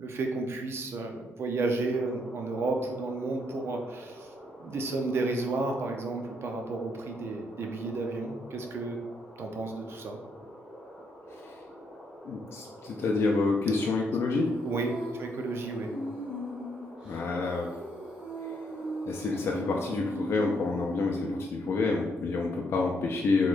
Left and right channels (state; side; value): normal; both; correlation 0.74